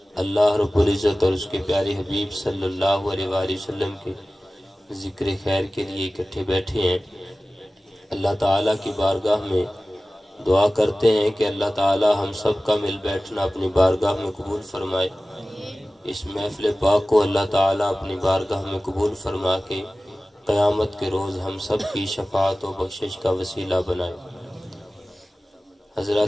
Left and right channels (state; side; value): normal; both; correlation 0.96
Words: اللہ رب العزت اور اس کے پیارے حبیب صلی اللہ علیہ وآلہ وسلم کے ذکر خیر کے لیے اکٹھے بیٹھے ہیں۔ اللہ تعالیٰ کی بارگاہ میں دعا کرتے ہیں کہ اللہ تعالیٰ ہم سب کا مل بیٹھنا اپنی بارگاہ میں قبول فرمائے، اس محفل پاک کو اللہ تعالیٰ اپنی بارگاہ میں قبول فرما کے قیامت کے روز ہم سب کی شفاعت و بخشش کا وسیلہ بنائے۔